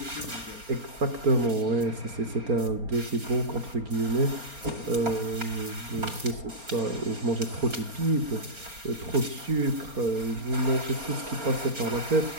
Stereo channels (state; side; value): late; left; 4.3 ms